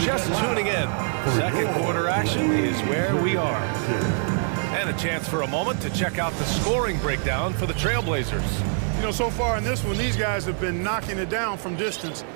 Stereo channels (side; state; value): left; silent; 58 dB below the other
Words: just tuning in, second quarter action is where we are. And a chance for a moment to check out the scoring breakdown for the Trailblazers. You know, so far in this one, these guys have been knocking it down from distance.